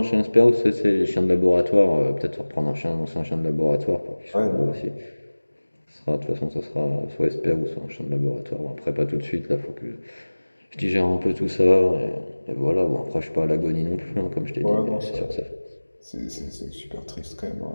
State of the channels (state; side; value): inverted; both; correlation -1.00